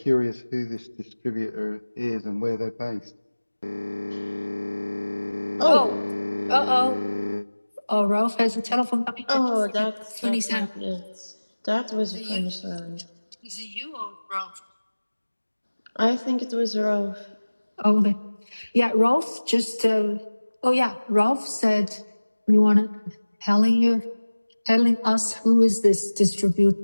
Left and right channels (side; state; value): both; inverted; correlation -1.00